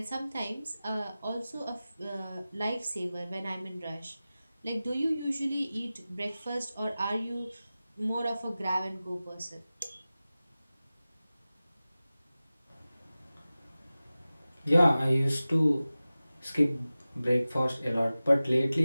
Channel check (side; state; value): both; inverted; correlation -0.96